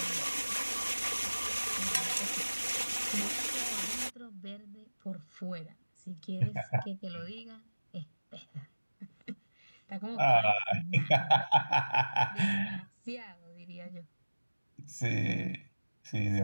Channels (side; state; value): both; inverted; correlation -1.00